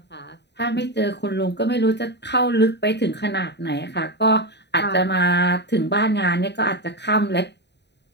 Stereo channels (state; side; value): late; right; 0.50 ms